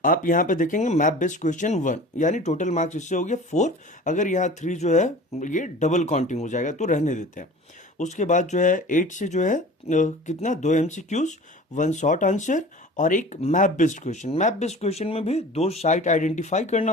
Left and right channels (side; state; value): both; normal; correlation 0.41